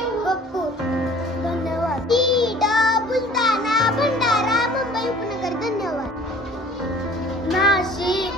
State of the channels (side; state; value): both; normal; correlation 0.50